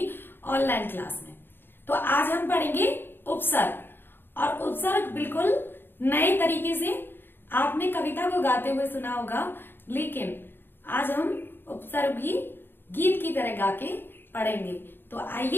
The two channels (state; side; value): late; right; 0.10 ms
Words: ऑनलाइन क्लास में। तो आज हम पढ़ेंगे उपसर्ग। और उपसर्ग बिल्कुल नए तरीके से आपने कविता को गाते हुए सुना होगा, लेकिन आज हम उपसर्ग भी गीत की तरह गा के पढ़ेंगे। तो